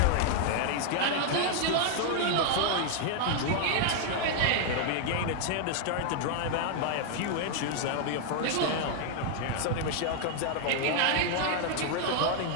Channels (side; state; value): both; different; correlation 0.00